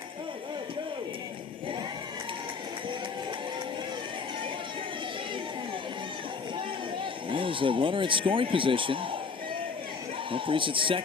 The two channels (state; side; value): quieter; right; 5.1 dB